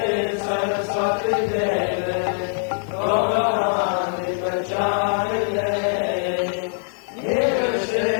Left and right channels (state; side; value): silent; right; digital silence